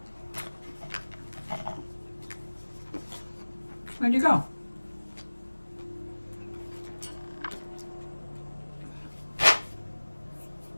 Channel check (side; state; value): both; inverted; correlation -1.00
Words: Where'd you go?